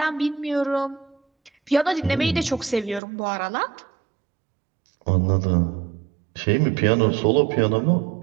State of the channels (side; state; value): left; drops out; at 3.0 s